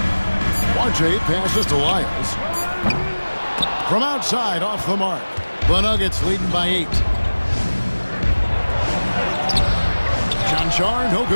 RJ passes to Lyles. From outside, off the mark. The Nuggets leading by 8. John Char, no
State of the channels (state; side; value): inverted; both; correlation -1.00